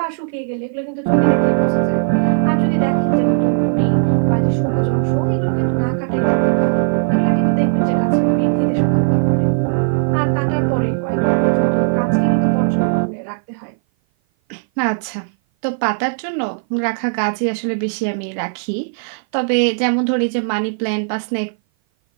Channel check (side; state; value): left; silent; 57 dB below the other